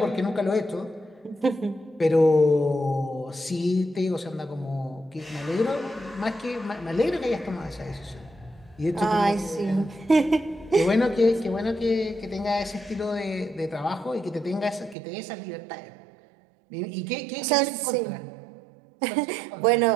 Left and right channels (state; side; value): drops out; left; at 15.0 s